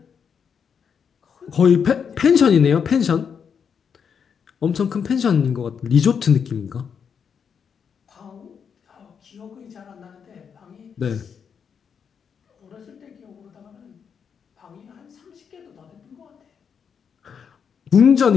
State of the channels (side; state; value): right; quieter; 6.9 dB